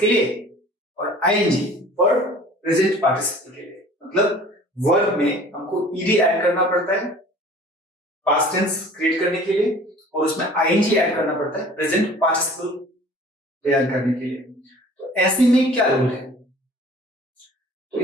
लिए और आईएनजी फॉर प्रेजेंट पार्टिसिपल के लिए। मतलब वर्ब में हमको ईडी ऐड करना पड़ता है पास्ट टेंस क्रिएट करने के लिए और उसमें आईएनजी ऐड करना पड़ता है प्रेजेंट पार्टिसिपल तैयार करने के लिए। तो ऐसे में क्या रूल है? तो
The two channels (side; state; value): both; normal; correlation 0.47